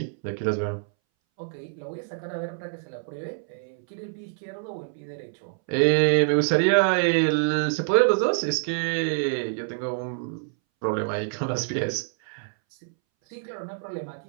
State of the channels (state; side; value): silent; left; 61 dB below the other